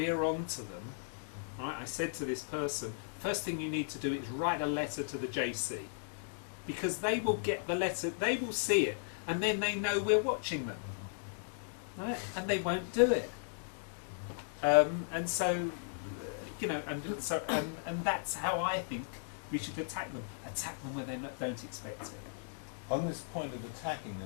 onto them, right, I said to this person, first thing you need to do is write a letter to the JC, because they will get the letter, they will see it, and then they know we're watching them, right? And they won't do it. And so, you know, and that's how I think we should attack them. Attack them where they don't expect it. On this point of attacking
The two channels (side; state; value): right; silent; digital silence